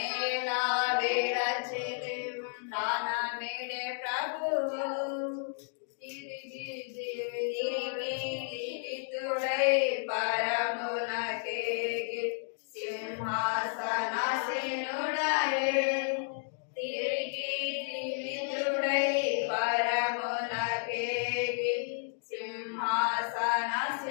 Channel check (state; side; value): silent; right; digital silence